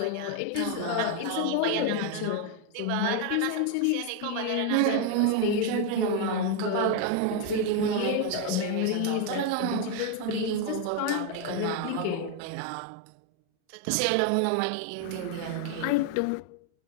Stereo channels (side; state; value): both; different; correlation 0.01